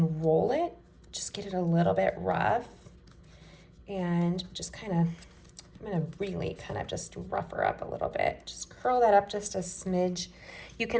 roll it, just get it a little bit rough. And just kind of, I'm gonna really kind of just rough her up a little bit. Just curl that up just a smidge. You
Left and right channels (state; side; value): identical; both; correlation 1.00